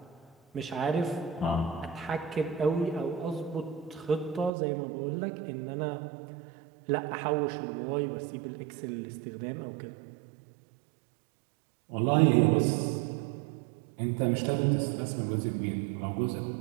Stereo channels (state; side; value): drops out; left; at 4.5 s